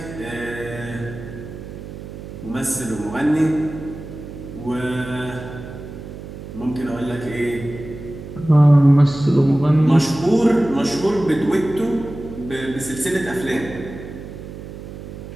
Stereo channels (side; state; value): right; noise; hum, 12 dB below the sound